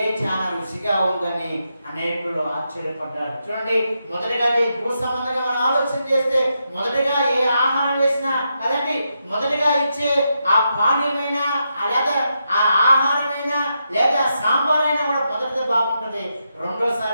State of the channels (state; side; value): inverted; both; correlation -0.84